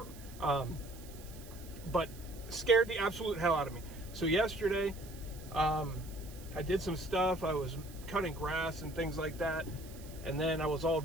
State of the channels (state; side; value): noise; right; hiss, 19 dB below the sound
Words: But scared the absolute hell out of me. So yesterday, I did some stuff. I was cutting grass and things like that, and then I was all